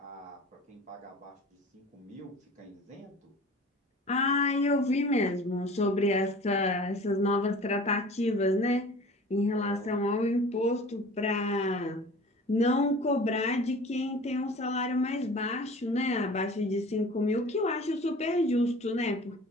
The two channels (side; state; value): both; normal; correlation 0.43